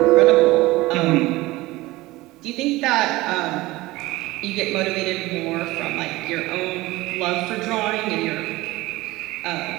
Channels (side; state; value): left; quieter; 19.6 dB